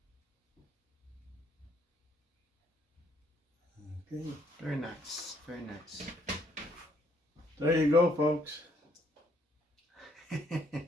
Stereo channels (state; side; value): normal; both; correlation 0.68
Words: Okay. Very nice. Very nice. There you go, folks.